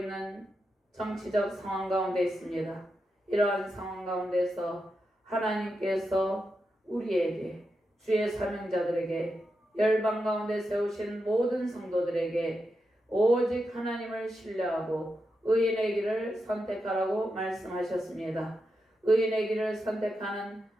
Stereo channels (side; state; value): both; normal; correlation 0.87